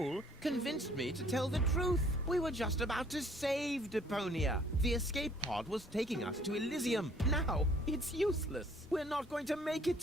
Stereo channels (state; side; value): normal; both; correlation 0.58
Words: convinced me to tell the truth. We were just about to save Deponia. The escape pod was taking us to Elysium. Now, it's useless. We're not going to make it